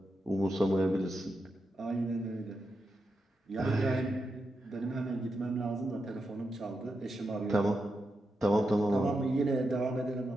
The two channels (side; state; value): both; normal; correlation 0.87